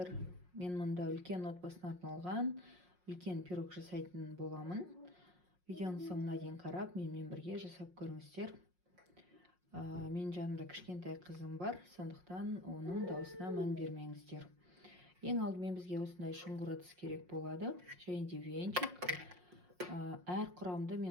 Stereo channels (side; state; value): left; late; 5.6 ms